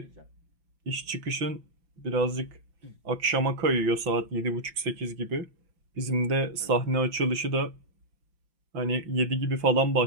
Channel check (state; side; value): late; left; 5.7 ms